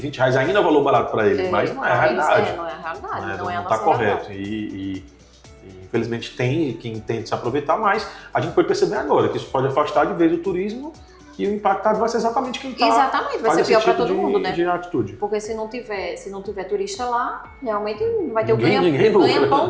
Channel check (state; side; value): identical; both; correlation 1.00